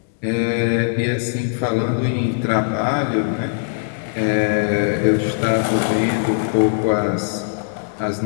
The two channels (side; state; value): right; silent; digital silence